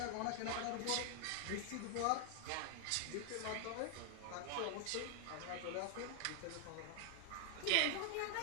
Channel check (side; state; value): both; different; correlation 0.00